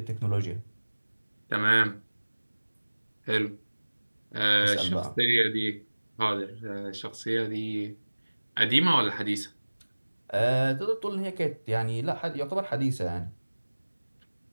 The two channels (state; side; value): inverted; both; correlation -1.00